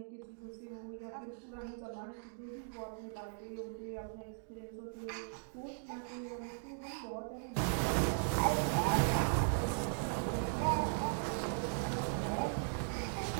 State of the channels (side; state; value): left; silent; digital silence